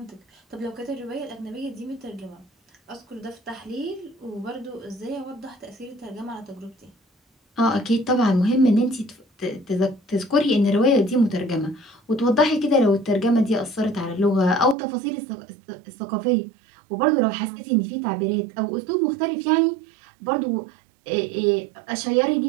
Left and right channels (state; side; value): drops out; left; at 14.8 s